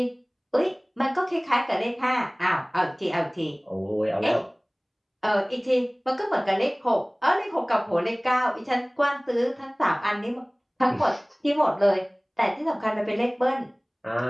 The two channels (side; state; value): both; identical; correlation 1.00